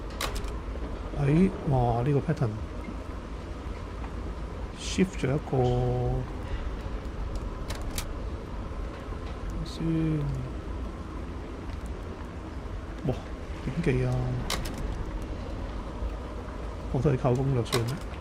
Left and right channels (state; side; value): identical; both; correlation 1.00